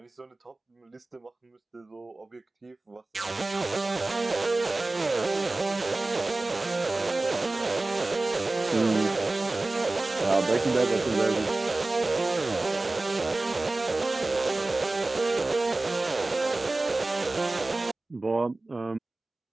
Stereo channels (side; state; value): left; quieter; 3.0 dB